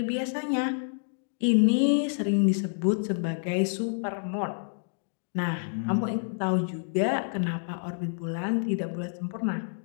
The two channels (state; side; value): silent; right; digital silence